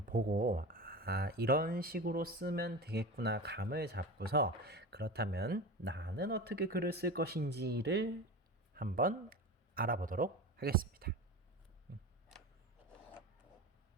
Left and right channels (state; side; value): normal; both; correlation 0.29